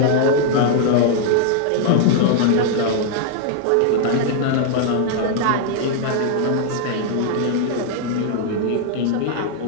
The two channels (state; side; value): different; both; correlation 0.00